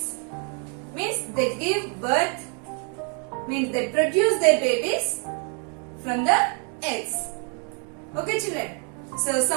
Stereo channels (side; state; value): left; quieter; 39.4 dB